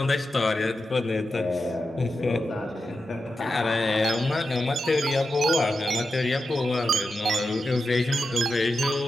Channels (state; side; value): normal; both; correlation 0.89